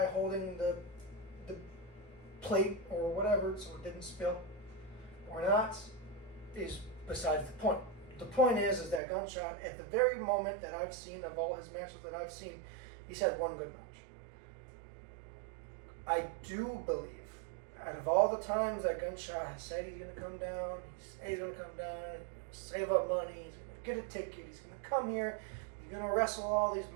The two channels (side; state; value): left; drops out; at 9.0 s